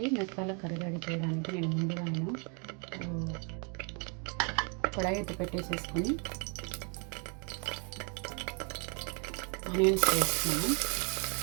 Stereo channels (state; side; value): quieter; left; 34.9 dB